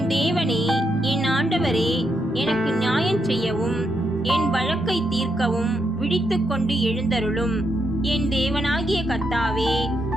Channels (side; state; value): both; normal; correlation 0.80